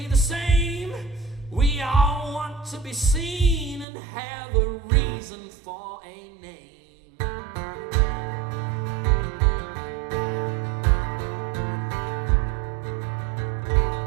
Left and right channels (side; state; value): left; drops out; at 3.9 s